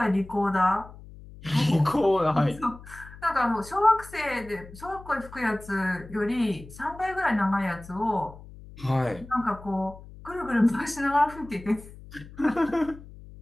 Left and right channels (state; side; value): noise; left; hum, 18 dB below the sound